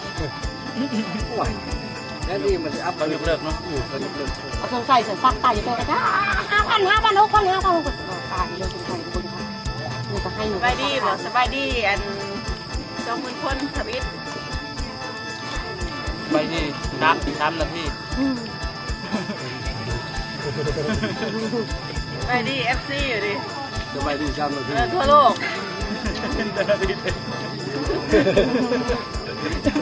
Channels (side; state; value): both; identical; correlation 1.00